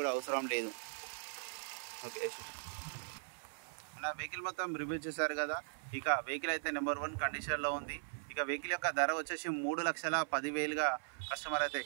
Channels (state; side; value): silent; left; 52 dB below the other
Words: కూడా అవసరం లేదు. ఓకే, నా వెహికల్ మొత్తం రివ్యూ చేశారు కదా. ఇక వెహికల్ అయితే నెంబర్ 1 కండిషన్లో ఉంది. ఇక వెహికల్ యొక్క ధర వచ్చేసి 3,10,000గా కస్టమర్ అయితే